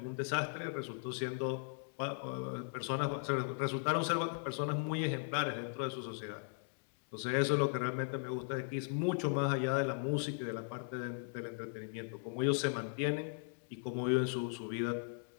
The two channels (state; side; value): silent; right; digital silence